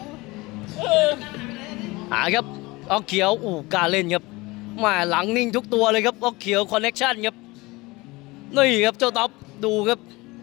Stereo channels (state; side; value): quieter; right; 22.4 dB